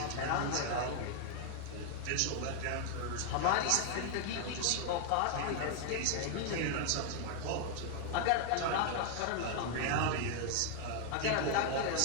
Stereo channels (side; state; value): both; different; correlation 0.00